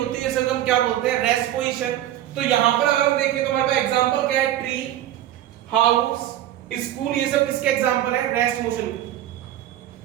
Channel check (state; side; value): quieter; left; 12.7 dB